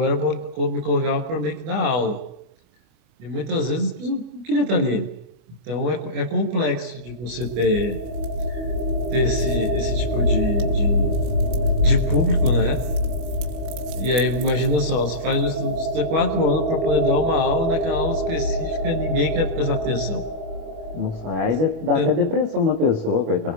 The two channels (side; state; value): left; late; 25 ms